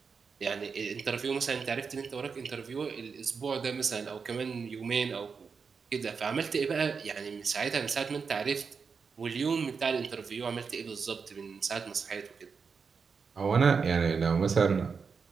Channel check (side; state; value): left; quieter; 5.5 dB